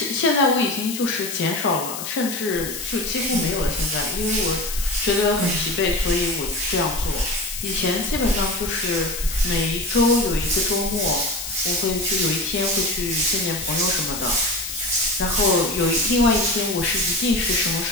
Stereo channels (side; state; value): left; noise; hiss, 7 dB below the sound